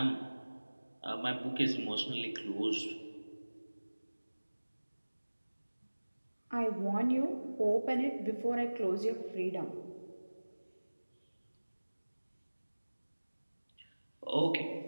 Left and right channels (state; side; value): inverted; both; correlation -1.00